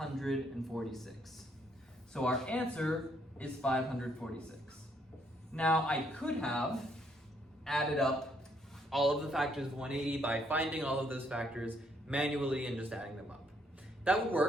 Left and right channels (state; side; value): normal; both; correlation 0.70